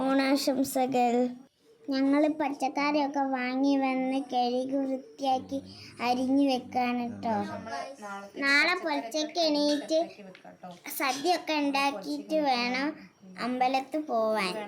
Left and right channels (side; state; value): both; identical; correlation 1.00